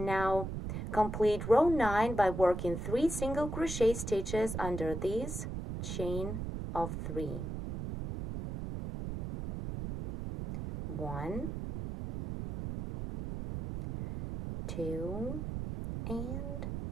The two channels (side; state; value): right; noise; rumble, 5 dB below the sound